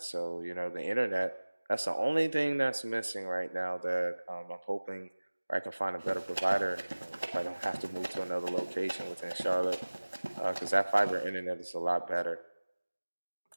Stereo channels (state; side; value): inverted; both; correlation -1.00